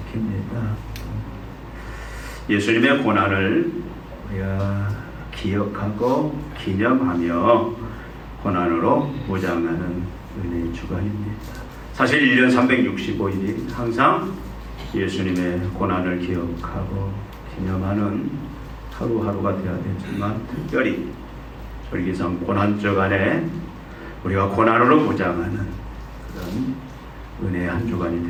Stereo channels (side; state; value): both; identical; correlation 1.00